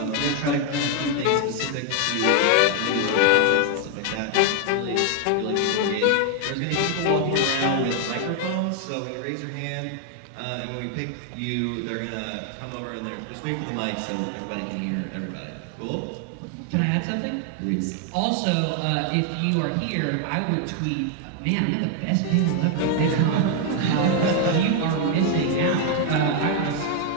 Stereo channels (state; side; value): different; both; correlation 0.00